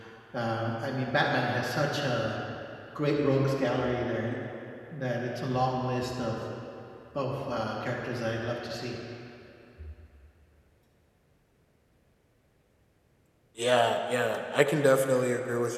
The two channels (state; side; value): identical; both; correlation 1.00